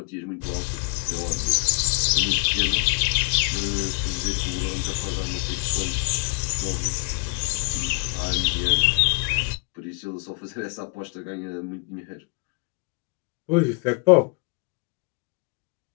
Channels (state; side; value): quieter; right; 34.8 dB